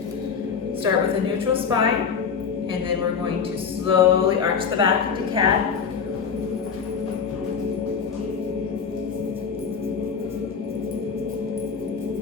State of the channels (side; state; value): right; quieter; 6.3 dB